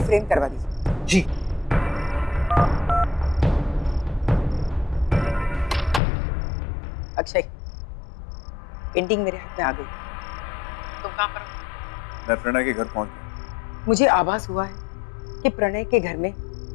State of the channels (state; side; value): drops out; right; at 6.0 s